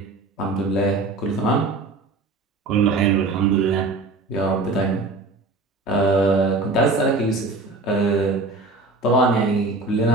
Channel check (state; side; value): quieter; left; 3.3 dB